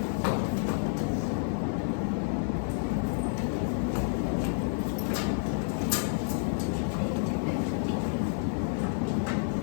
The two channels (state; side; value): silent; right; digital silence